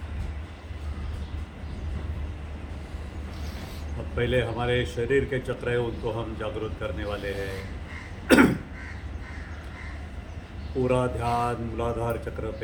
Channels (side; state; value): both; identical; correlation 1.00